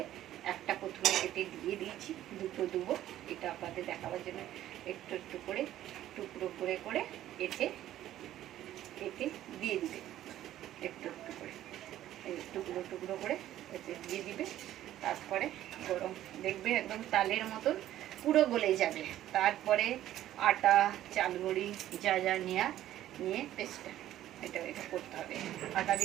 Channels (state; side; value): quieter; left; 13.0 dB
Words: একটা প্রথমে কেটে দিয়ে দিয়েছি, দুটো দেবো, এটা আপনাদের দেখাবার জন্য একটু একটু করে টুকরো করে করে কেটে কেটে দিয়ে দিবে, একটু একটু করে টুকরো টুকরো করে এতে দিয়ে দিবে। তারপরে গরম দেখবে একদম তালের মতন পুরো গলে যাবে। তারপরে আটা, চালগুড়ি যা যা নিয়ে পেস্টটা এটা করতে হবে। আটা